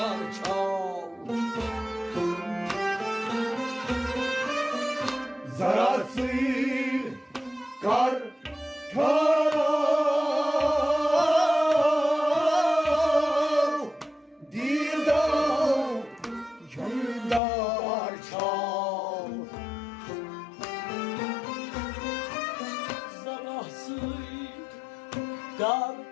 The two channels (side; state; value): right; drops out; at 17.4 s